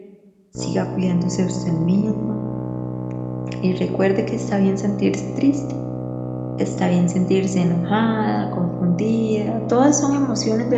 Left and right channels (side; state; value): both; identical; correlation 1.00